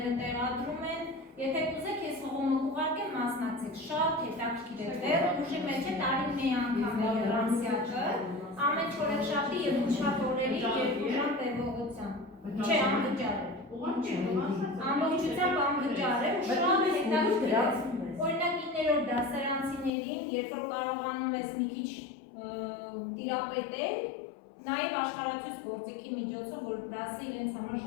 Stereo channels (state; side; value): drops out; right; at 19.9 s